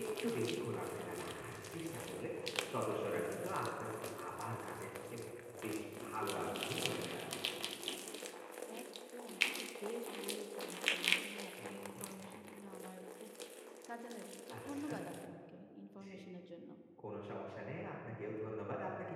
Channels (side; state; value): both; identical; correlation 1.00